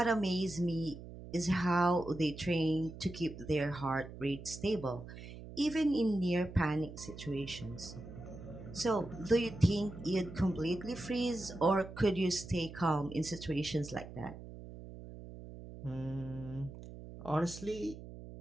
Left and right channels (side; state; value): right; noise; hum, 13 dB below the sound